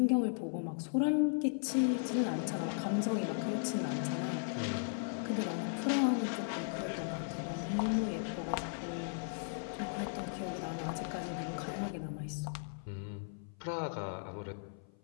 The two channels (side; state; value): right; silent; 53 dB below the other